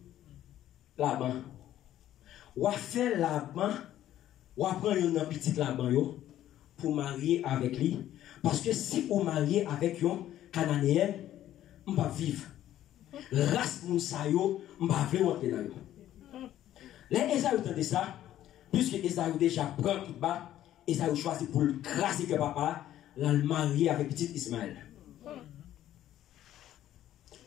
là-bas. Ou faire là-bas, ou prendre une petite là-bas pour marier avec lui. Parce que si vous mariez avec un Cananéen, on va vivre. Race Mounsayo, on va vivre entre nous. Les Esaü entendent ça, puisque Esaü déjà prend tout bas, Esaü choisit pour le craser que papa, la marier avec petit Ismaël.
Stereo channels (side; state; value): right; quieter; 12.5 dB